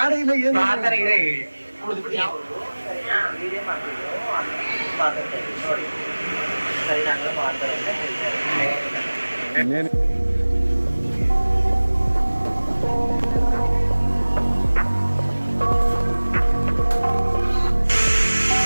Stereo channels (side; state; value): both; inverted; correlation -1.00